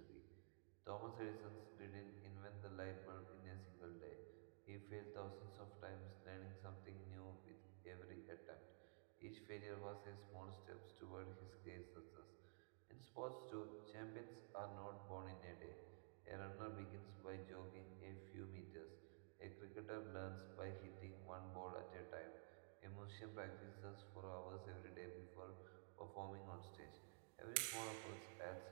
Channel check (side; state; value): left; silent; digital silence